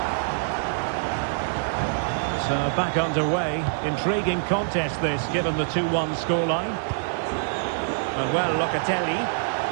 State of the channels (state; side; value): silent; left; 62 dB below the other